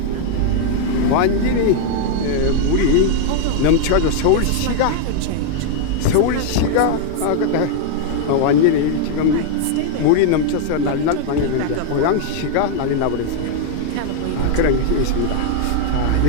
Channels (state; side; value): different; both; correlation 0.00